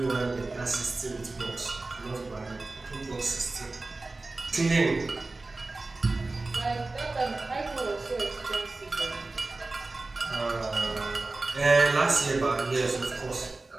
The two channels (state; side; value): quieter; left; 3.3 dB